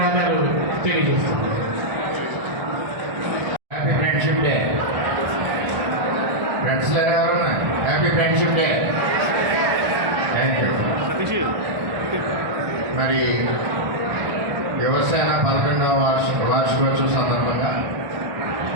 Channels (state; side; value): late; left; 1.4 ms